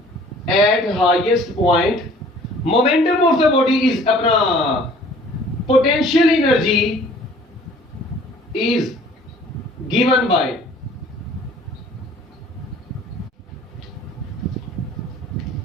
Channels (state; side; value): normal; both; correlation 0.52